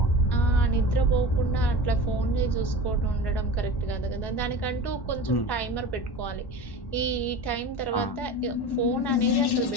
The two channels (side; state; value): right; late; 1.1 ms